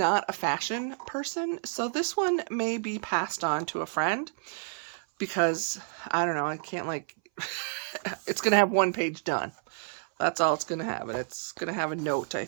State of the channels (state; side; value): silent; left; 58 dB below the other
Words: a fashion person, so this one may be passed on to a friend because, I don't know, I can't like, it's going to have 1 page done. That's all it's going to have, and it's going to have a note, I